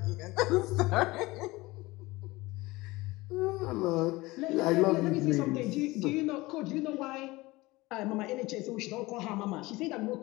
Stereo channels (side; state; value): right; quieter; 20.8 dB